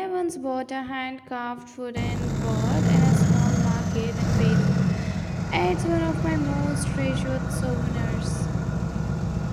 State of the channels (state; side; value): identical; both; correlation 1.00